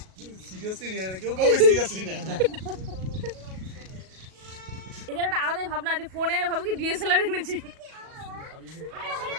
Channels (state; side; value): late; left; 37 ms